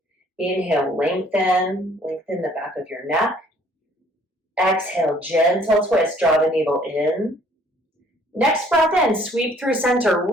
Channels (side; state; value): both; normal; correlation 0.59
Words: Inhale, lengthen the back of your neck. Exhale, gentle twist, draw the navel in. Next breath in, sweep through center,